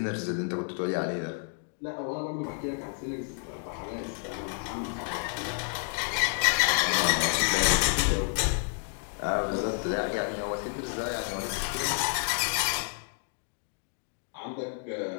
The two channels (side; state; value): right; silent; 58 dB below the other